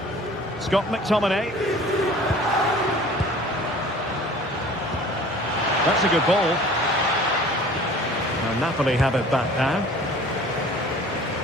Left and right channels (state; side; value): normal; both; correlation 0.47